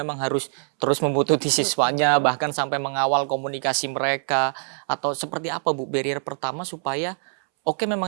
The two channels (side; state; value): left; silent; 63 dB below the other